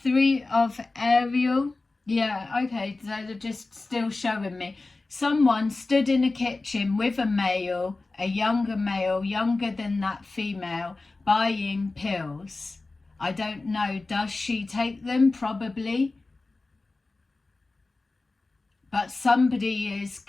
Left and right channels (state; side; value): quieter; right; 3.4 dB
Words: Three of Ariel. Yeah, okay, so they're just still showing me. Someone stood in a kitchen with a male, a younger male, younger than that female, buying pills. I don't know, does she take them? Probably. But somebody is